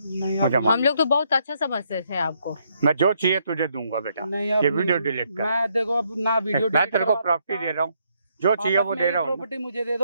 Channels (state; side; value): inverted; both; correlation -0.74